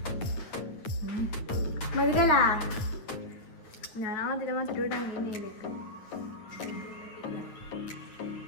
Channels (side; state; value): right; late; 9.3 ms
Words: മധുരല്ല, ഞാൻ ആദ്യം മധുരം ഇടാൻ